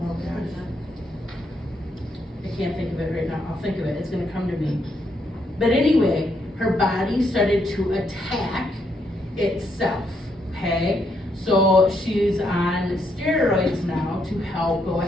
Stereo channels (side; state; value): both; normal; correlation 0.76